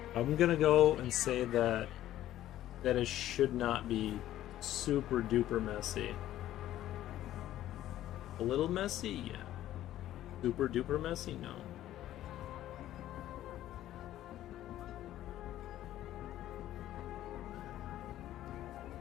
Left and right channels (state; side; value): quieter; right; 13.2 dB